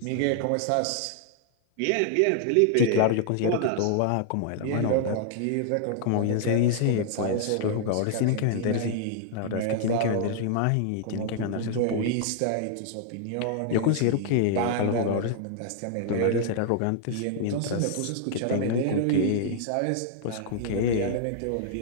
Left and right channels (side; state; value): both; different; correlation -0.01